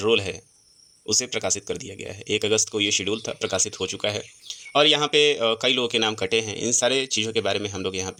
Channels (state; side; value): identical; both; correlation 1.00